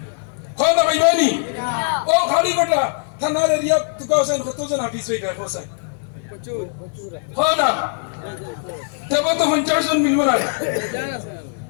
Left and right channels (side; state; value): right; silent; 56 dB below the other